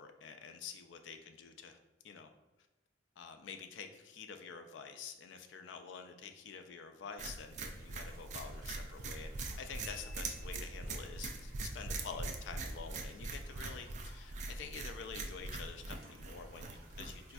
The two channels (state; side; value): normal; both; correlation 0.40